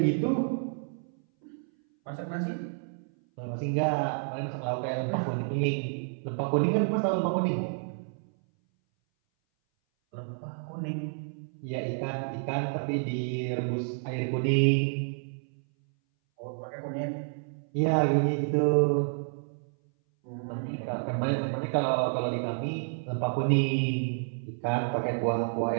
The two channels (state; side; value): silent; left; 58 dB below the other